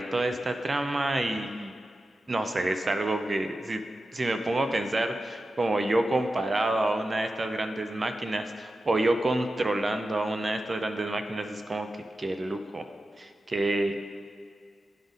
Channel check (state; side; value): normal; both; correlation 0.92